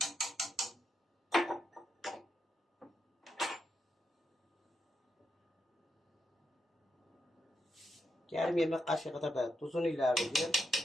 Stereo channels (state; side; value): normal; both; correlation 0.83